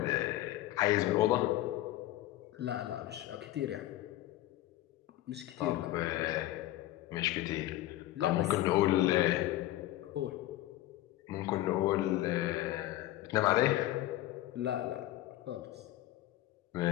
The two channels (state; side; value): quieter; right; 15.2 dB